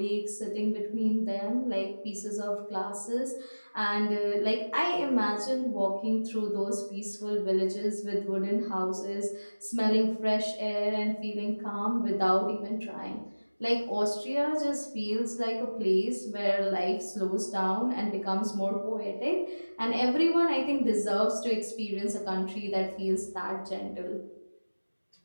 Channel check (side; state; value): both; inverted; correlation -1.00